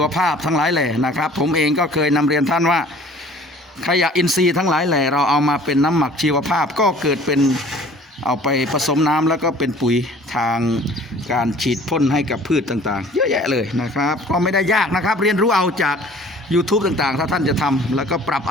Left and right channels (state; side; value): normal; both; correlation 0.50